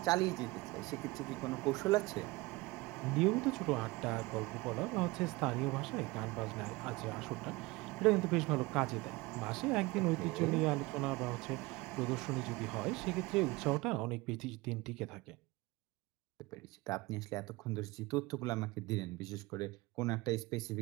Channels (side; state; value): left; quieter; 22.2 dB